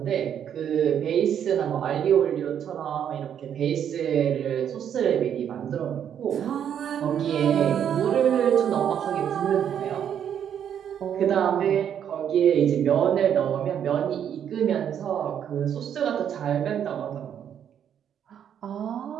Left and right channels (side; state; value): left; quieter; 9.0 dB